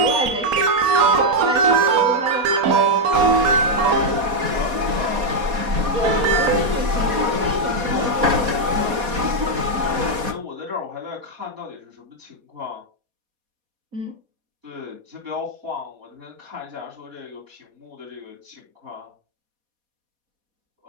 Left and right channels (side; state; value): left; late; 4.2 ms